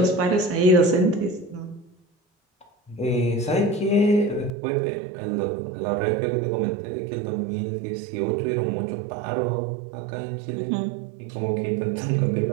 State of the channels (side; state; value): left; drops out; at 4.5 s